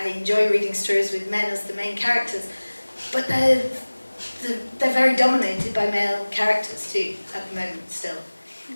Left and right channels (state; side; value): inverted; both; correlation -1.00